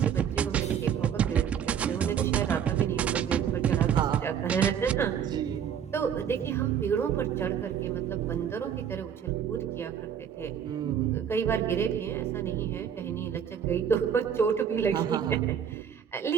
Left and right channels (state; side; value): quieter; left; 8.3 dB